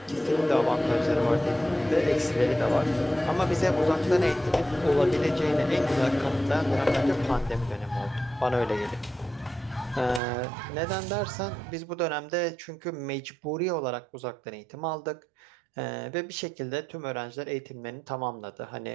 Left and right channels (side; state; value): left; drops out; at 10.2 s